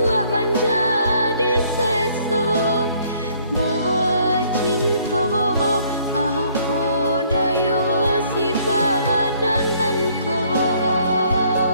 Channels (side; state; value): both; inverted; correlation -0.63